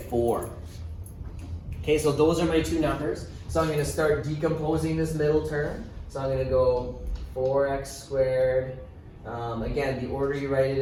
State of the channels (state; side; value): identical; both; correlation 1.00